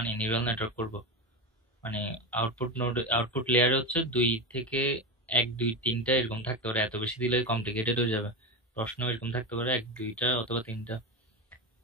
নিউরাল নেটওয়ার্ক করব, মানে আউটপুট নোড, আউটপুট লেয়ারে হচ্ছে দুই থেকে এক দুই তিনটা এরকম থাকতে পারে, এত বেশি দিলে কমপ্লিকেটেড হয়ে যাবে। প্রশ্ন এরকম থাকতে পারে এক দুইটা অথবা তিনটা।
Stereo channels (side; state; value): both; normal; correlation 0.18